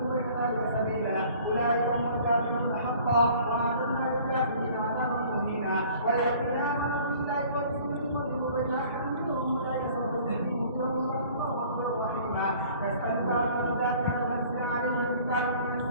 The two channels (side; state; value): both; inverted; correlation -0.52